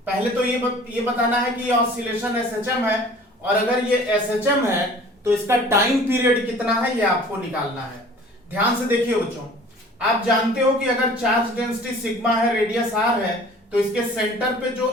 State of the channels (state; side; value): normal; both; correlation 0.47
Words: पहले तो ये बताना है कि ये ऑसिलेशन एसएचएम है, और अगर ये एसएचएम है तो इसका टाइम पीरियड कितना है ये आपको निकालना है। ध्यान से देखिए बच्चों, आप जानते हो कि अगर चार्ज डेंसिटी सिग्मा है, रेडियस आर है, तो इसके सेंटर पे जो